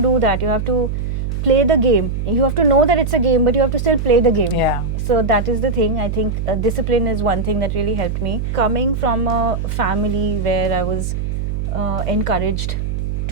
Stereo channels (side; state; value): right; noise; hum, 2 dB below the sound